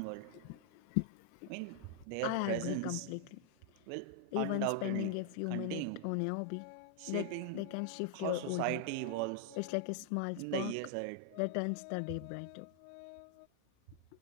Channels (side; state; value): both; different; correlation 0.00